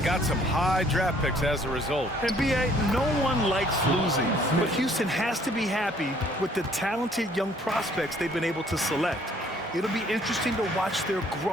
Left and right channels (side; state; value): both; normal; correlation 0.61